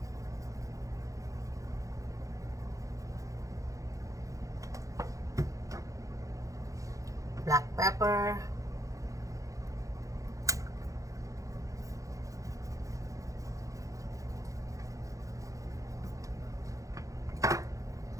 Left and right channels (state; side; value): late; left; 0.16 ms